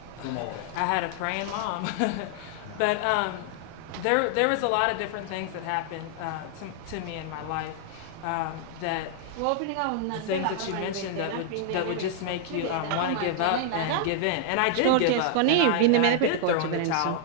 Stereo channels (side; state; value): both; different; correlation -0.01